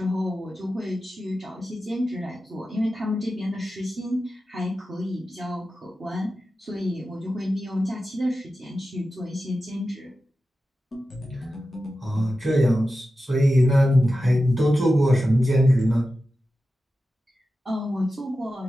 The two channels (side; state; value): both; normal; correlation 0.93